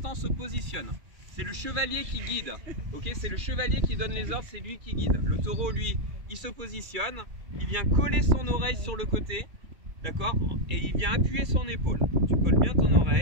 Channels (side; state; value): left; late; 2.3 ms